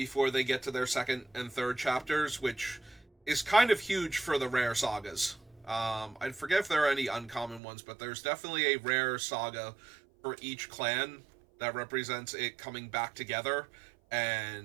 they get to their second and third chapters, which is kind of huge for the rare sagas. I forget if there are any uncommon ones, but there's definitely a rare saga for each clan that represents it coming back together,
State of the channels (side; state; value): left; drops out; at 7.6 s